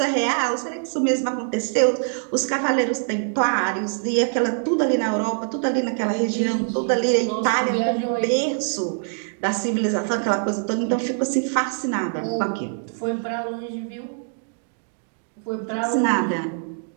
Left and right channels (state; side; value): silent; left; digital silence